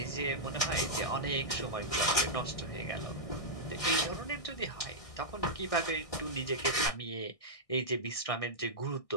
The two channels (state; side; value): late; right; 1.6 ms